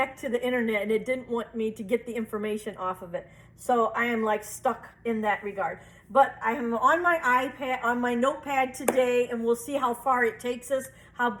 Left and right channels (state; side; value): identical; both; correlation 1.00